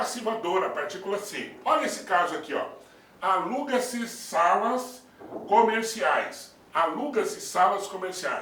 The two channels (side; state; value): both; identical; correlation 1.00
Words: a partícula C. Olha esse caso aqui, ó. Aluga-se salas comerciais. Aluga-se salas